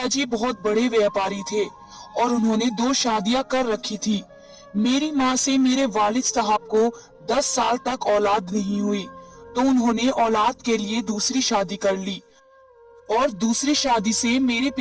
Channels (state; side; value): identical; both; correlation 1.00